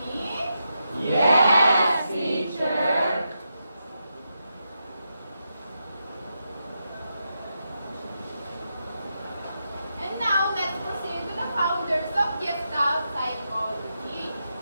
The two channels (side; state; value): both; inverted; correlation -0.85